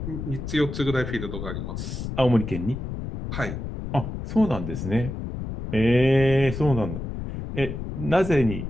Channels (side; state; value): left; noise; rumble, 6 dB below the sound